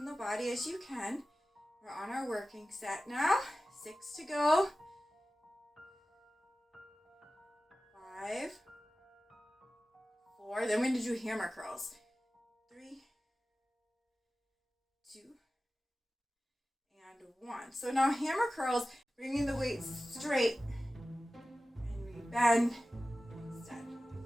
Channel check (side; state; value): both; normal; correlation 0.95